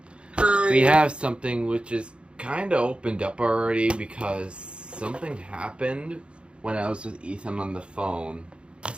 Hi. we have something which is kind of opened up already because something happened when I was with Ethan on the phone.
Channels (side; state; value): left; late; 0.057 ms